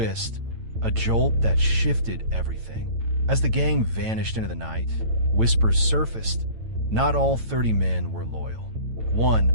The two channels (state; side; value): late; left; 9.0 ms